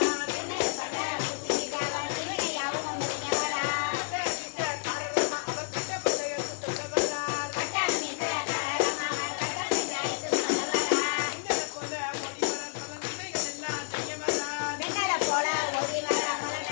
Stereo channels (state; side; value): silent; right; digital silence